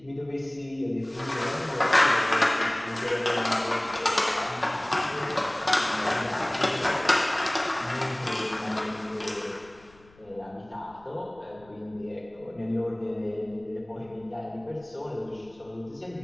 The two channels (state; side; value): noise; left; rumble, 27 dB below the sound